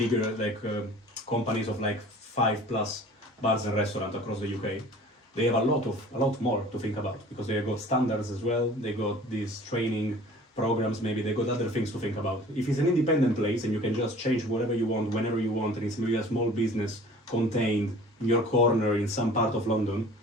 companies of 5+ bars and restaurants across the UK, they have a lot more to think about, because they got standards as well. They got these training programs. Maybe they got other things to think about. If it's an independent place and you can just change whatever you want whenever you want, and it's maybe a small business contained in your corner in some part of London,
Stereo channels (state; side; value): normal; both; correlation 0.46